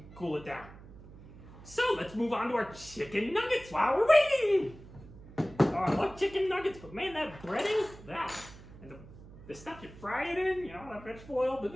cool it down. So, let's move on to our chicken nuggets while we're waiting. Oh, I love chicken nuggets, but man, that breading, and the stuff you fry it in, that vegetable oil, blah,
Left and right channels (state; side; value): noise; right; hum, 18 dB below the sound